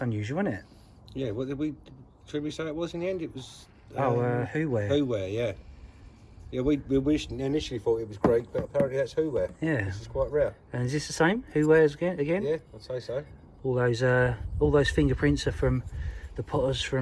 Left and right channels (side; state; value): both; identical; correlation 1.00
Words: unusual, isn't it? Yeah, what should we say it was in the end? It was... Whoware. Whoware, yeah. Yeah, we initially thought it was Greek, but apparently that's Whoware. Yeah. This is quite rare. And is this the same? Whowares again? Yeah, I'd say so. All those fingerprints are from the potters